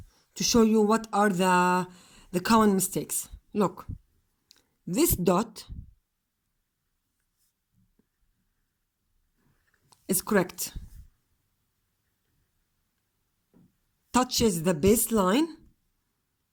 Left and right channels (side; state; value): both; identical; correlation 1.00